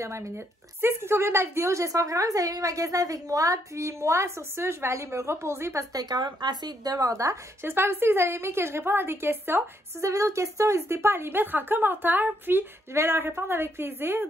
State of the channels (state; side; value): normal; both; correlation 0.74